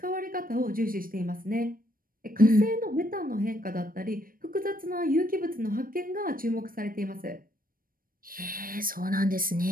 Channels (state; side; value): late; left; 0.41 ms